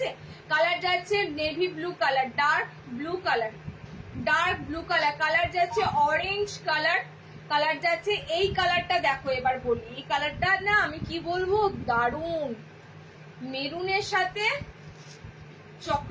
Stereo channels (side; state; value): both; identical; correlation 1.00